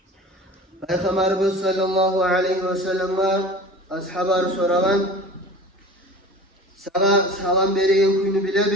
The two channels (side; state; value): both; normal; correlation 0.39